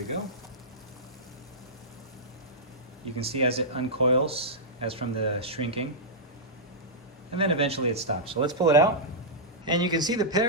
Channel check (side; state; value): both; normal; correlation -0.12